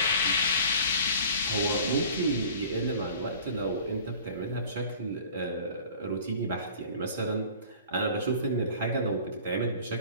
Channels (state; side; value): inverted; both; correlation -0.45